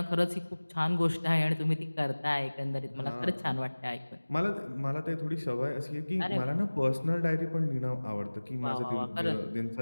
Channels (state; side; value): inverted; both; correlation -1.00